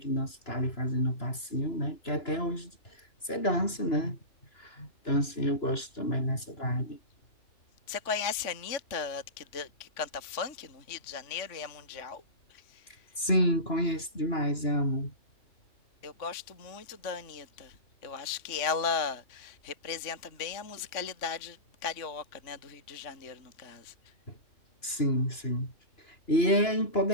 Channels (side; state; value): right; late; 2.9 ms